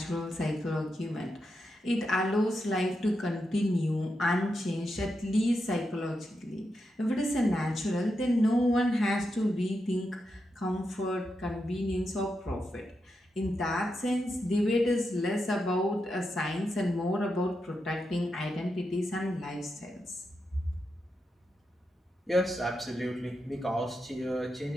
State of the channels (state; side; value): normal; both; correlation 0.86